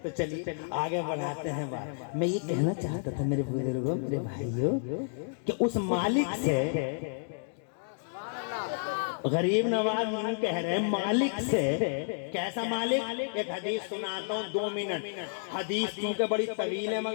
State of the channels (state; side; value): silent; right; digital silence